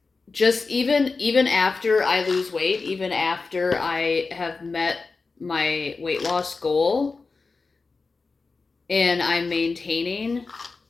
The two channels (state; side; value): quieter; right; 4.2 dB